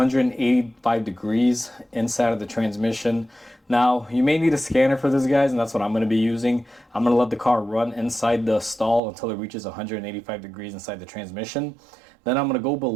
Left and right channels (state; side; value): drops out; left; at 9.0 s